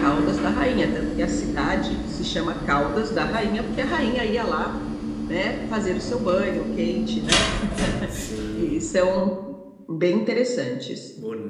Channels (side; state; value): both; identical; correlation 1.00